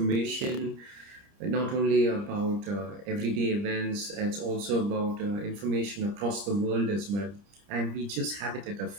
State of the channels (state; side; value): late; left; 30 ms